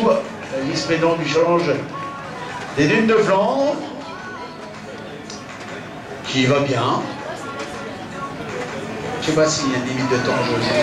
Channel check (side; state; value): both; identical; correlation 1.00